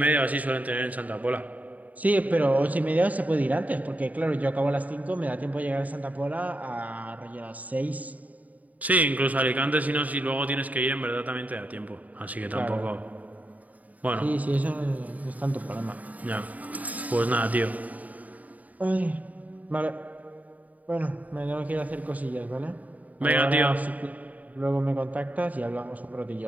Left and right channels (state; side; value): late; left; 0.074 ms